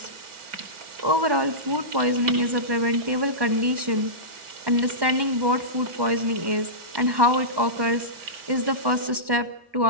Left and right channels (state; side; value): late; left; 1.1 ms